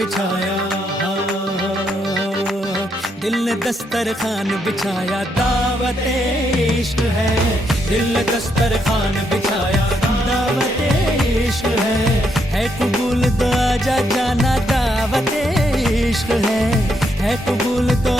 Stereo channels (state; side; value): normal; both; correlation 0.77